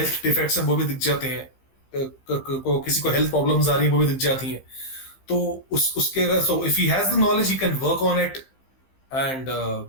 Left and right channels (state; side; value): late; right; 15 ms